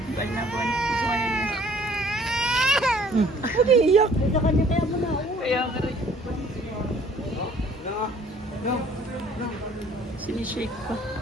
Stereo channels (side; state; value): both; normal; correlation 0.56